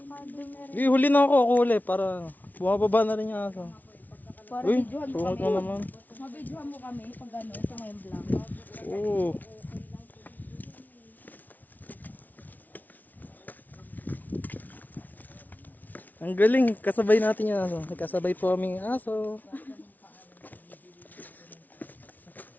dumere. Huli na ako uli para bumababa na rin yung aso. Para Uy, videohan mo sungit kami. mo naman. Mabidyohan mo kami pag ano, sa ngayon vlog. Oo. Ang galing, kasabay natin yung aso. Kasabay po aming aso.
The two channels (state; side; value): late; right; 0.079 ms